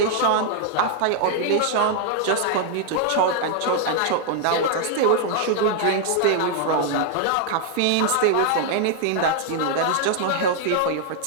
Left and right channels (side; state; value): both; different; correlation 0.00